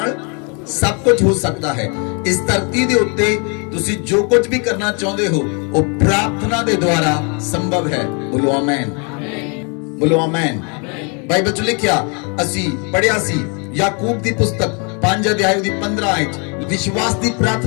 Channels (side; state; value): right; quieter; 35.2 dB